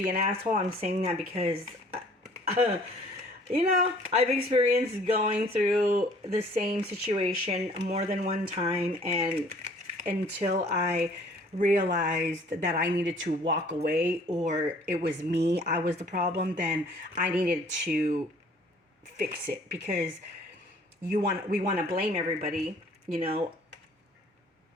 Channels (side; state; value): both; normal; correlation 0.55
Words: an asshole. I'm saying that because, you know, I've experienced going through the same situation more than one time, and until I realized that I needed to walk away, or it was me, I was the problem, then I needed to fix it, because we want to blame everybody, you know,